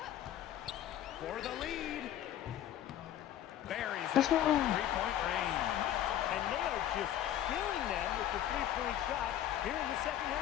For the lead. Buries it. Three-point range. And they are just killing them with the three-point shot here in the second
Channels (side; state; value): right; quieter; 11.8 dB